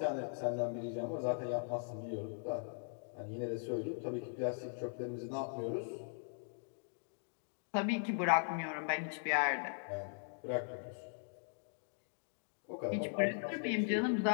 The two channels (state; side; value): silent; right; digital silence